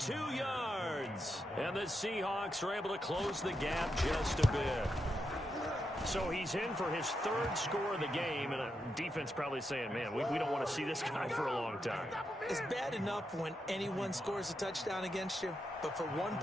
yards. And the Seahawks are able to close the gap just a bit. So he's in for his third score of the game, and a defense probably saying, man, we don't want to see this guy for a long time. It's bad enough when anyone scores a touchdown against you, but for one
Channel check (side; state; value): both; normal; correlation 0.85